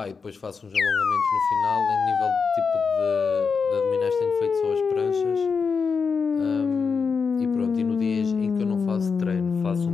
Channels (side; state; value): right; quieter; 5.5 dB